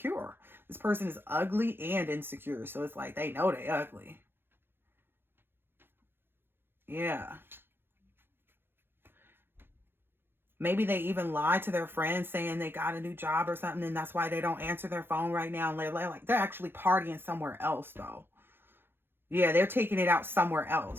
This person is ugly and insecure. So it's like they know they ugly. Yeah. Maybe they even lie to their friends saying they got a new job or something, and that's why they don't answer their phone right now. And they're actually partying somewhere else, though. Yeah, they're taking it out somewhere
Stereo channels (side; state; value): left; late; 0.10 ms